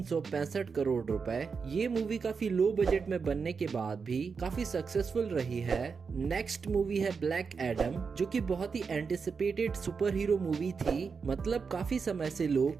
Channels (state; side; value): quieter; left; 5.4 dB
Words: करोड़ रुपए। ये मूवी काफी लो बजट में बनने के बाद भी काफी सक्सेसफुल रही है। नेक्स्ट मूवी है ब्लैक एडम, जो कि बहुत ही एंटिसिपेटेड सुपर हीरो मूवी थी। मतलब काफी समय से